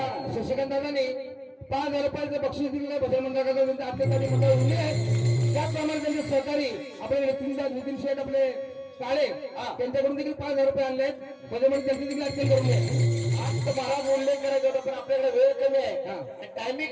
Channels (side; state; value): both; identical; correlation 1.00